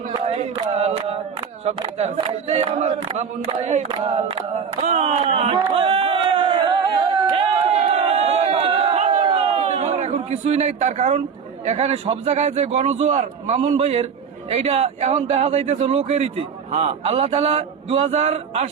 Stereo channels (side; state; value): left; quieter; 6.5 dB